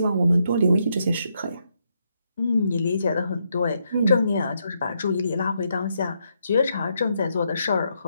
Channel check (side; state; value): both; inverted; correlation -0.78